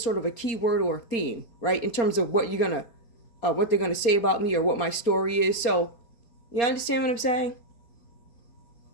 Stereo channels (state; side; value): late; right; 4.3 ms